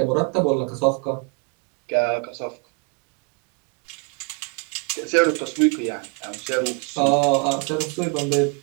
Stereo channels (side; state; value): left; quieter; 34.1 dB